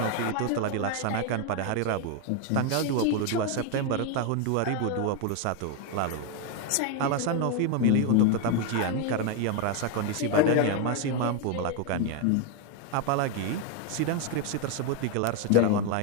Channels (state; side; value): different; both; correlation 0.01